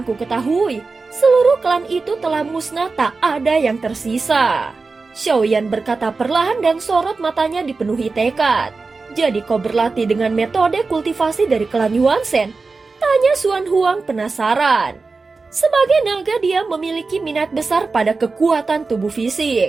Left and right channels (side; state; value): left; quieter; 4.1 dB